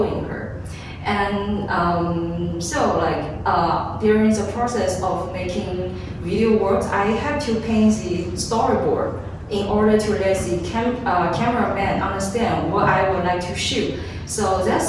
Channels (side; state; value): both; identical; correlation 1.00